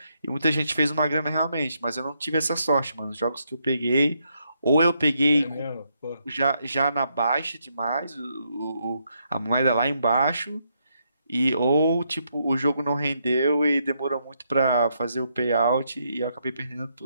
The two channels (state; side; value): inverted; both; correlation -0.77